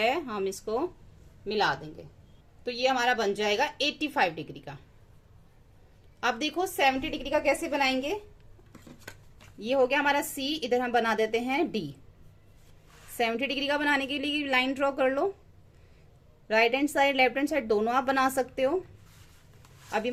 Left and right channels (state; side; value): identical; both; correlation 1.00